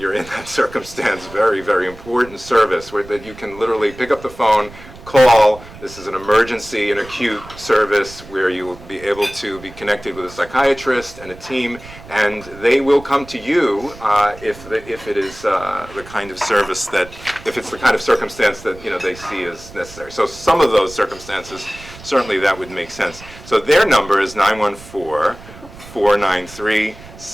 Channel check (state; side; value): noise; right; rumble, 18 dB below the sound